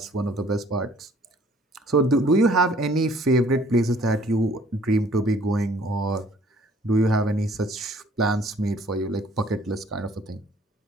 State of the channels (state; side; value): normal; both; correlation 0.57